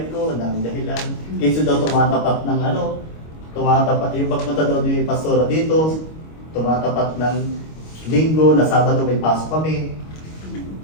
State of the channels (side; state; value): right; late; 25 ms